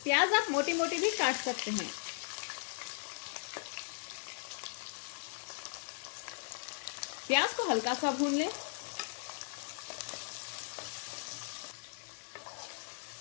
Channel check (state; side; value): silent; right; digital silence